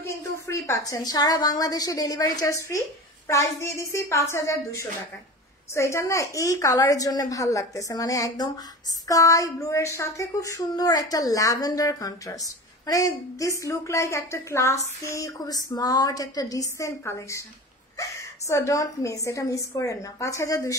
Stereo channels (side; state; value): both; normal; correlation 0.33